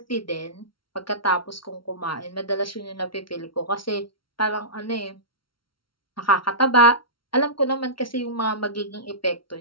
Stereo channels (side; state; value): right; late; 0.74 ms